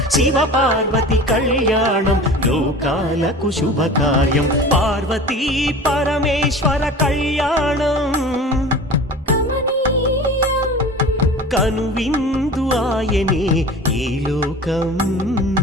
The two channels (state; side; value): normal; both; correlation 0.38